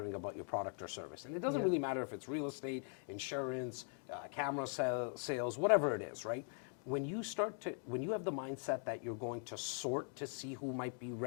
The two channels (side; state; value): right; silent; 50 dB below the other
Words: about your product or service, and it doesn't really matter if it's real estate, insurance, camera sales, whatever it is, right? When you have the mindset that you're going to sort to see who might be